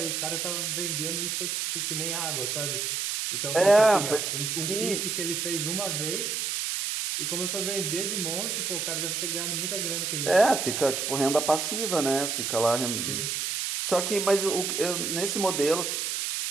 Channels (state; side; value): noise; right; hiss, 1 dB below the sound